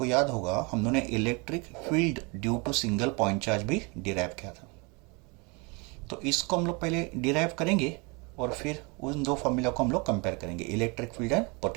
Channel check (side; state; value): left; quieter; 29.5 dB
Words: याद होगा हम लोगों ने electric field due to single point charge भी डिराइव किया था। तो इसको हम लोग पहले डिराइव करेंगे और फिर उन दो फॉर्मूला को हम लोग कंपेयर करेंगे, इलेक्ट्रिक फील्ड एंड